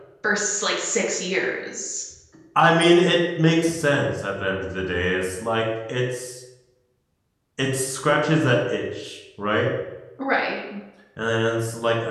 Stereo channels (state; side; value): identical; both; correlation 1.00